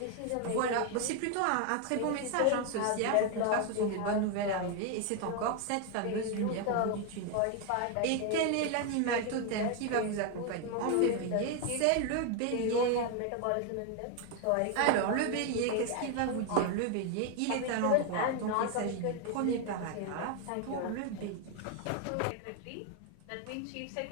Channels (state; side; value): different; both; correlation 0.01